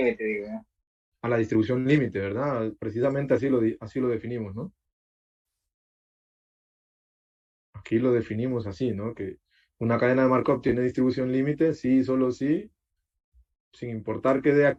digo. A la distribución límite, ¿verdad? Precisamente así lo definimos, ¿no? Aquí lo definimos así, ¿no? Que una cadena de Markov tiene distribución límite, sí, solo sí, sin importar qué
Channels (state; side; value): identical; both; correlation 1.00